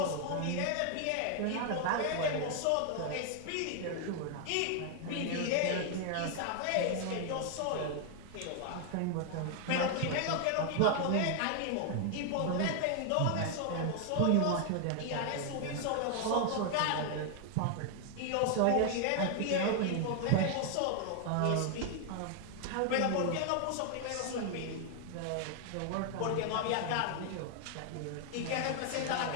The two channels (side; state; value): both; different; correlation 0.00